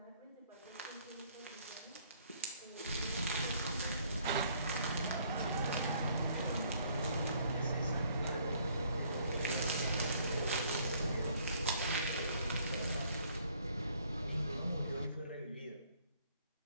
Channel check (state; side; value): inverted; both; correlation -0.64